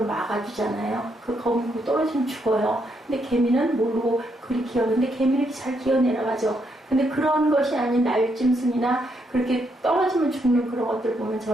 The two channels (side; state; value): both; normal; correlation 0.77